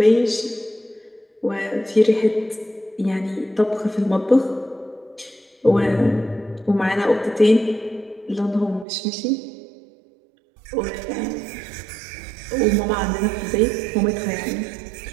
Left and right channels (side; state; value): left; drops out; at 8.8 s